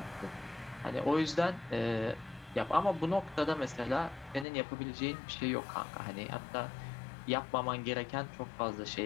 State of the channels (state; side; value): drops out; right; at 4.5 s